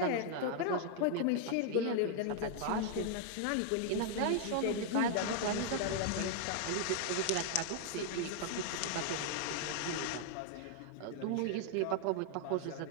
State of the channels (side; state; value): both; different; correlation 0.00